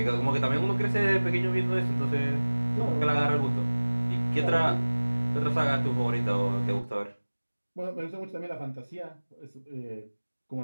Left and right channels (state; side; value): inverted; both; correlation -1.00